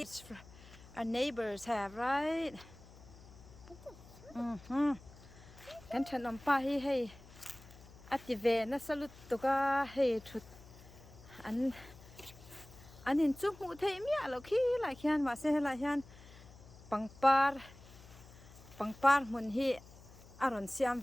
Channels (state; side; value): noise; left; hum, 20 dB below the sound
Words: what our neighbors have, right? Kan chan pa hi hey. Ative na salut to ka hey thut an in chu mu thei mi alo khi la khian ma se la hian pangpar mun hi aron siam